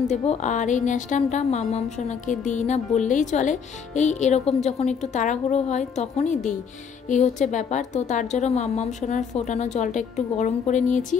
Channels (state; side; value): quieter; right; 6.6 dB